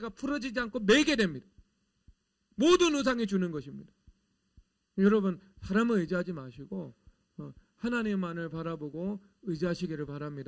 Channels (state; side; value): identical; both; correlation 1.00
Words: 풀어지지 않고 매게 됩니다. 모든 우상이 주는 것입니다. 여러분, 사람을 의지하지 마시고 하나님만을 바라보고 의지하시기를